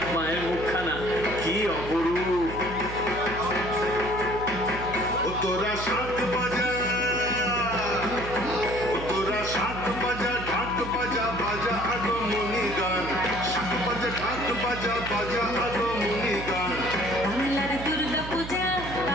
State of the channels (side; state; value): right; noise; hum, 9 dB below the sound